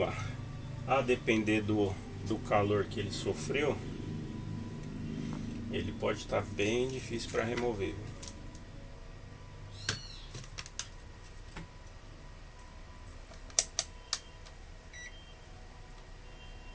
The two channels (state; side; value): identical; both; correlation 1.00